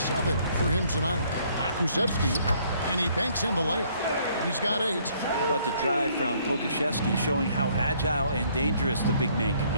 for him tonight. Kusevsky, and he banks in the layup. He's got 8. How about the drive from Pokusevski, showing how agile and dangerous the big man can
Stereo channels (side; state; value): both; inverted; correlation -0.64